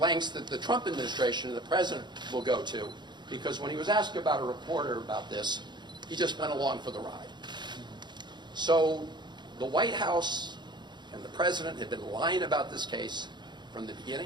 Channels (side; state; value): left; late; 0.21 ms